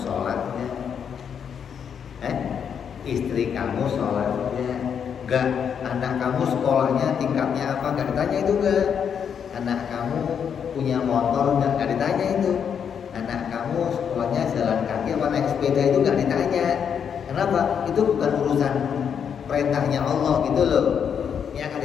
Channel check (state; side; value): quieter; right; 7.6 dB